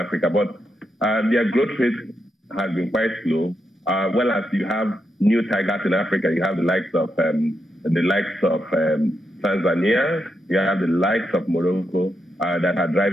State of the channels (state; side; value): normal; both; correlation 0.83